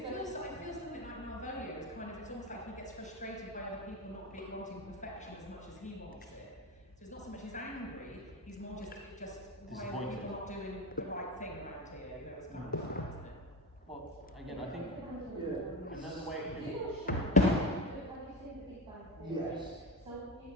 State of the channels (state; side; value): normal; both; correlation 0.23